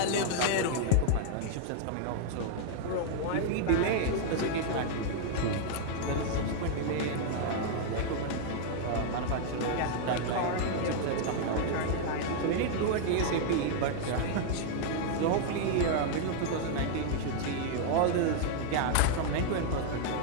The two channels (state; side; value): different; both; correlation 0.00